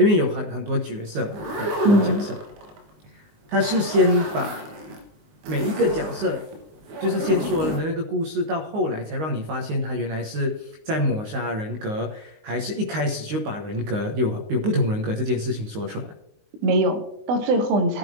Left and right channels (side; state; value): left; late; 19 ms